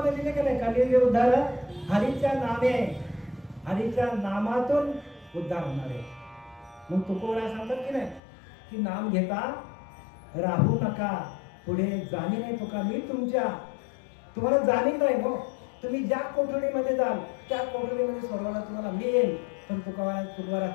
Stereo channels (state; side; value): drops out; right; at 8.2 s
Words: दिले की नाही? कली विरुद्धार हरीच्या नामे, हरीच्या नामातून उद्धार होणार आहे. मग तुकोबरा सांगतात की नाही की नाम घेता राहू नका, पुढे जाणी नाही तुका मी तुम्हाला जाणीव नाही. हो, तुम्ही ज्या कोठडीमध्ये जाल त्या कोठडीमध्ये सोडवायला तुम्हाला मी येईल. पण तुकोबरा